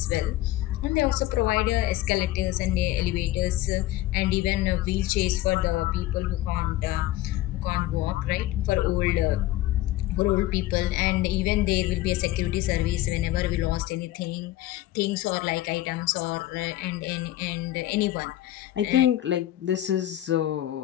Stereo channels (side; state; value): right; quieter; 15.1 dB